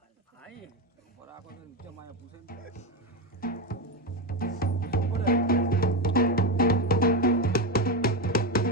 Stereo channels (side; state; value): both; normal; correlation 0.12